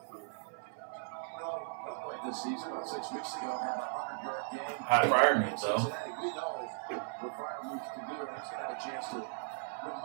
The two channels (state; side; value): silent; left; 53 dB below the other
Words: This season, about 6 weeks ago, had a 100-yard game. Pat Freiermuth, though. We know what Freiermuth can do, and he's going to have a chance to